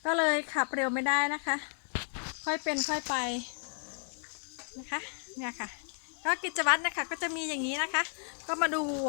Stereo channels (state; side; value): silent; right; 56 dB below the other